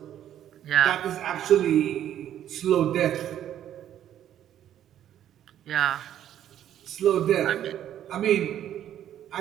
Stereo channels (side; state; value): left; quieter; 10.9 dB